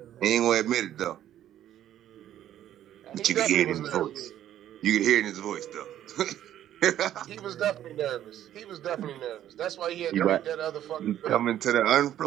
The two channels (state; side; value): quieter; left; 11.7 dB